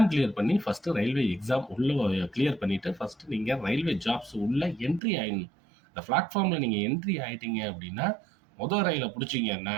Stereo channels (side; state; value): left; drops out; at 5.0 s